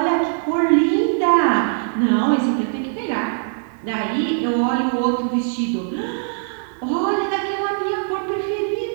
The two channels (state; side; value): silent; left; 56 dB below the other